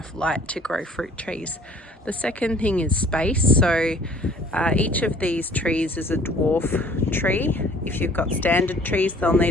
light to grow fruit trees. The second thing is space. So each of these trees is a dwarf tree. If you've got standard trees, they'll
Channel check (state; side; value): normal; both; correlation 0.53